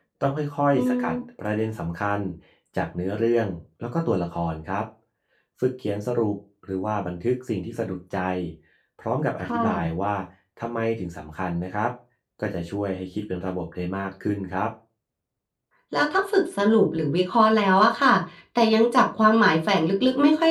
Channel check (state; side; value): identical; both; correlation 1.00